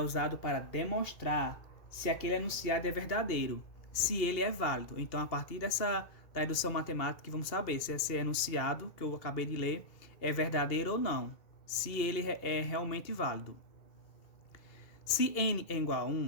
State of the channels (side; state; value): right; late; 2.7 ms